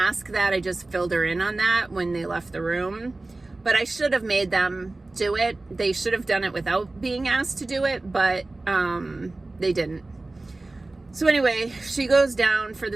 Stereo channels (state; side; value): quieter; left; 3.1 dB